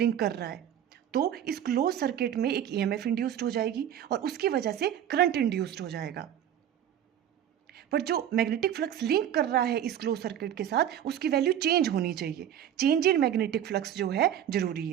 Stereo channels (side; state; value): left; quieter; 10.3 dB